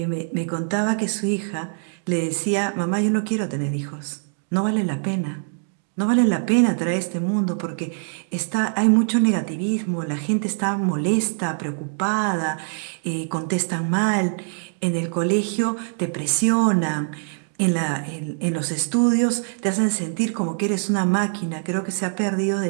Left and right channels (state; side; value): silent; left; digital silence